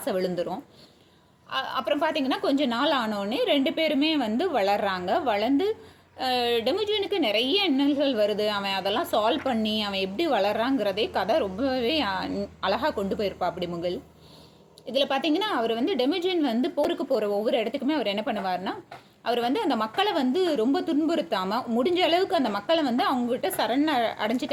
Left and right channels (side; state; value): both; identical; correlation 1.00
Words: விழுந்துடும். அப்புறம் பார்த்திங்கன்னா கொஞ்ச நாள் ஆனோடனே 2 பேருமே வந்து வளர்கிறாங்க. வளர்ந்து டெமிஜியனுக்கு நிறைய இன்னல்கள் வருது. அவன் அதெல்லாம் சால்வ் பண்ணி அவன் எப்படி வளர்றாங்கிறதே கதை ரொம்பவே அழகாக கொண்டு போயிருப்பா அப்படி முகில். இதில் பார்த்திங்கன்னா அவர் வந்து டெமிஜியன் வந்து போருக்கு போகிற ஒவ்வொரு இடத்துக்குமே அவர் என்ன பண்ணுவார்னா, அவர் வந்து அந்த மக்களை வந்து ரொம்ப துன்புறுத்தாமல் முடிஞ்ச அளவுக்கு அந்த மக்களை வந்து அவங்ககிட்ட